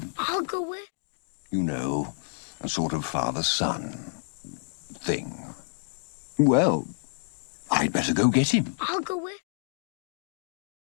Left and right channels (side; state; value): right; silent; digital silence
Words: I'll go with. You know, a sort of father-son thing. Well, I'd better go get him. I'll go with.